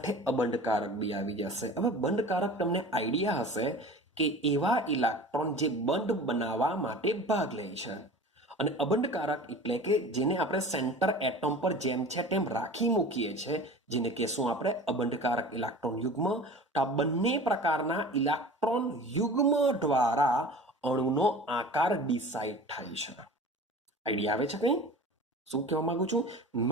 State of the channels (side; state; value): both; normal; correlation 0.39